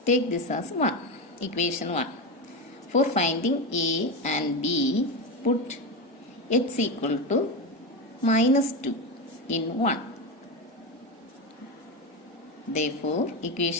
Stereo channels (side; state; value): both; normal; correlation 0.16